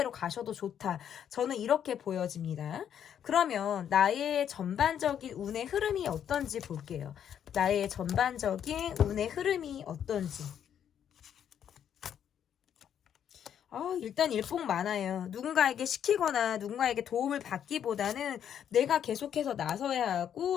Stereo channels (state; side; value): quieter; right; 9.2 dB